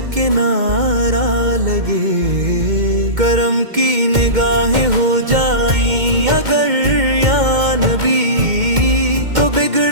کنارہ لگے، کرم کی نگاہیں ہو جائیں اگر یا نبی، تو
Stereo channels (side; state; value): left; late; 2.1 ms